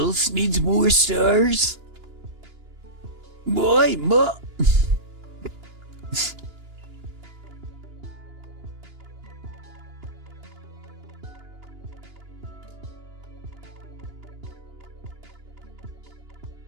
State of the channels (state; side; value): late; left; 2.9 ms